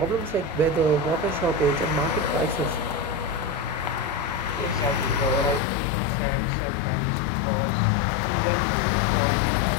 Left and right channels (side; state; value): right; drops out; at 5.6 s